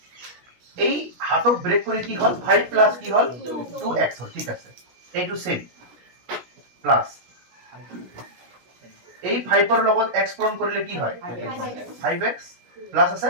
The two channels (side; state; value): left; late; 16 ms